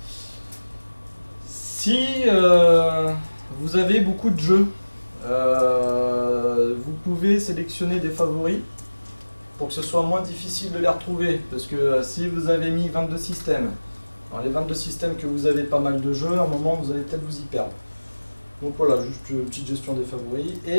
si vous avez beaucoup de jeux, vous pouvez sélectionner des favoris pour que ce soit moins difficile de les retrouver, parce que si vous avez mis 22 systèmes, dans les 22 systèmes que vous avez pas mal de jeux, à un moment vous allez peut-être vous y perdre. Donc voilà, juste une petite gestion des favoris.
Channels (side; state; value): both; inverted; correlation -1.00